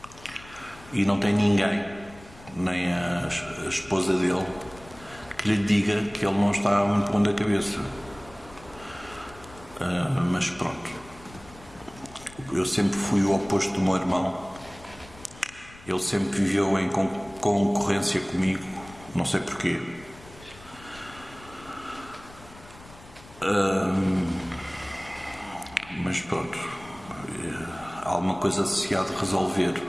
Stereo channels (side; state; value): left; noise; rumble, 21 dB below the sound